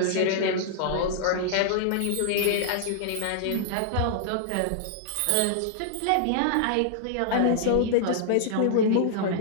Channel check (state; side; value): different; both; correlation -0.01